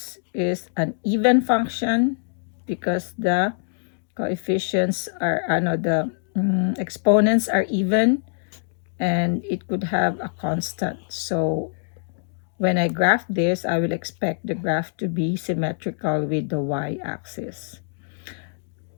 is an even function because the coefficients are, the exponents are even and it could have a constant. So when I graph this, I will expect the graph to be symmetrical with the y-axis.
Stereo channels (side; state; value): right; silent; digital silence